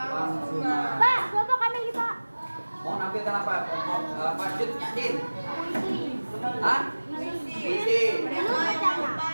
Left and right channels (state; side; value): inverted; both; correlation -1.00